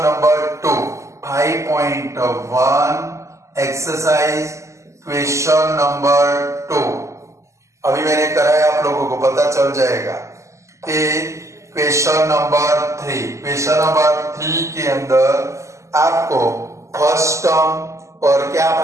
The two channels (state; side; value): late; left; 0.14 ms